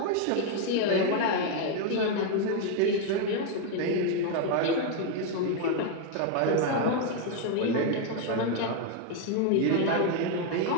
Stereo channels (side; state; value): both; different; correlation 0.01